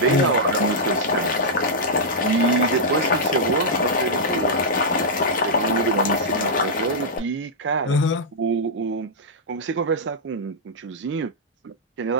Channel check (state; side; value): normal; both; correlation -0.09